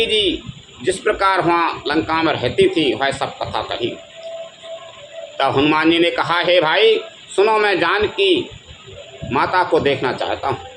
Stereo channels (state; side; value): identical; both; correlation 1.00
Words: जी जिस प्रकार वहाँ लंका में रहती थी वह सब कथा कही। तब हनुमान जी ने कहा, हे भाई सुनो, मैं जानकी माता को देखना चाहता हूँ।